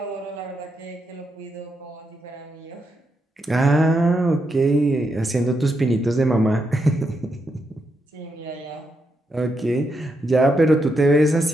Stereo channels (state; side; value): normal; both; correlation 0.82